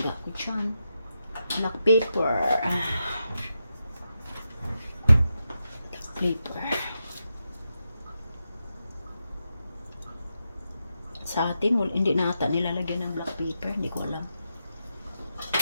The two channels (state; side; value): inverted; both; correlation -0.87